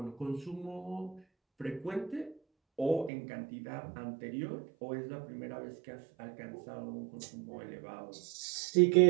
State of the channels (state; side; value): drops out; left; at 3.1 s